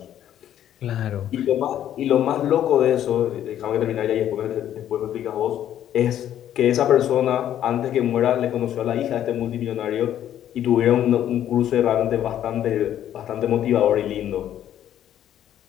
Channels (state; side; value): quieter; right; 11.0 dB